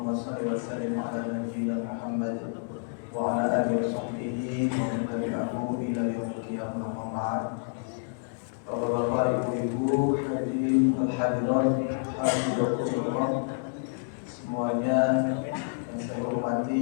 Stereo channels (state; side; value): silent; right; digital silence